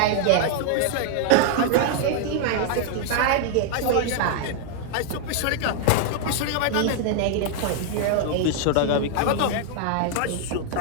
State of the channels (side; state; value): both; different; correlation 0.00